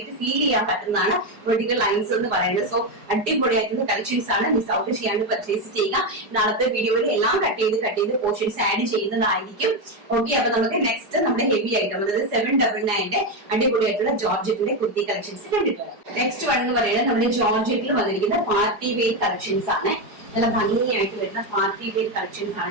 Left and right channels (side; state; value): left; late; 4.8 ms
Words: ഫീൽ ചെയ്യാൻ പറ്റുന്നതാണ് വെർട്ടിക്കൽ ലൈൻസ് എന്ന് പറയുന്നത്. സോ അടിപൊളിയായിട്ടുള്ള കളക്ഷൻസ് ആണ്. മിസ് ഔട്ട് ചെയ്യാണ്ട് പർച്ചേസ് ചെയ്യുക. നാളത്തെ വീഡിയോയിൽ എല്ലാം കട്ട് ചെയ്ത് പോർഷൻസ് ആഡ് ചെയ്യുന്നതായിരിക്കും. ഓക്കെ, അപ്പൊ നമുക്ക് നെക്സ്റ്റ് നമ്മുടെ ഹെവി ഐറ്റം, അതായത് 799 അടിപൊളിയായിട്ടുള്ള ജോർജറ്റിന്റെ കുർത്തി കളക്ഷൻസ് കണ്ടിട്ട് വരാം. നെക്സ്റ്റ് വൺ എന്ന് പറയുന്നത് നമ്മുടെ ജോർജറ്റിൽ വന്നിരിക്കുന്ന പാർട്ടി വെയർ കളക്ഷൻസ് ആണ്. നല്ല ഭംഗിയായിട്ട് വരുന്ന പാർട്ടി വെയർ കളക്ഷൻസ്